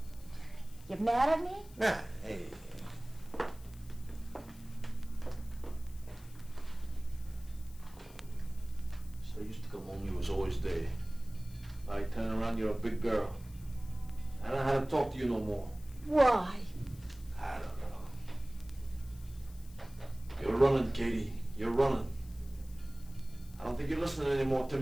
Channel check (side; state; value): left; noise; hiss, 23 dB below the sound